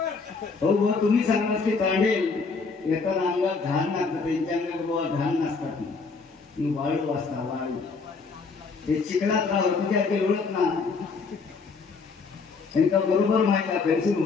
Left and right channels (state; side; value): quieter; right; 4.6 dB